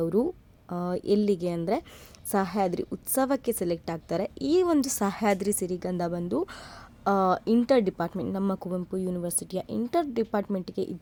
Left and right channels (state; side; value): identical; both; correlation 1.00